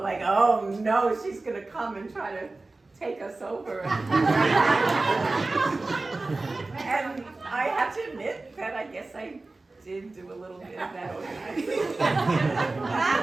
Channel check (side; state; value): left; quieter; 3.3 dB